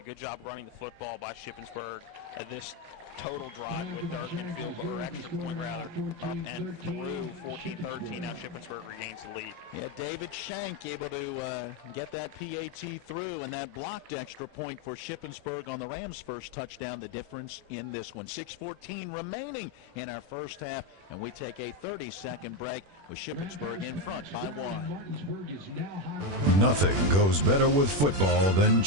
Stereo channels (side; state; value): left; late; 21 ms